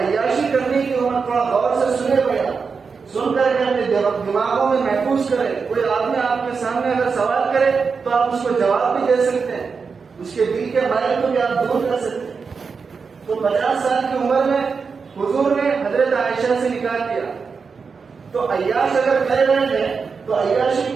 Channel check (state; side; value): quieter; left; 5.3 dB